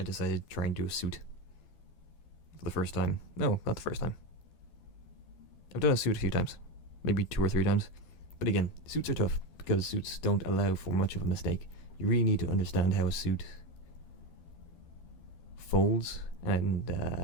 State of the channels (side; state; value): right; late; 12 ms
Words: decided to try and do a suit for the first time. No, not the first time. I've done a suit a few times, maybe 2 or 3 times. But again, suits are tough because suits don't allow for much of a mistake. You really need to understand how a suit folds and